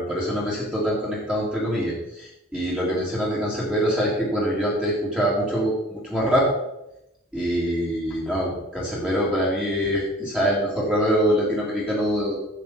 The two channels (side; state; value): both; normal; correlation 0.49